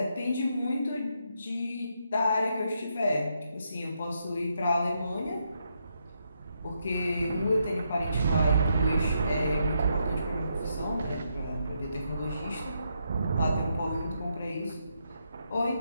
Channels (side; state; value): both; inverted; correlation -0.79